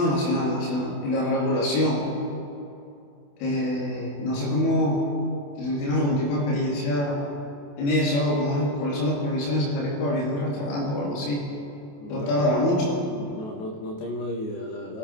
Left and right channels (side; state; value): right; late; 28 ms